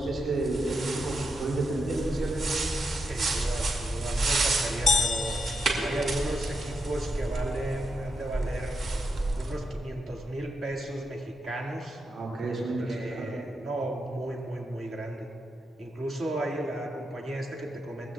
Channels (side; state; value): both; normal; correlation 0.84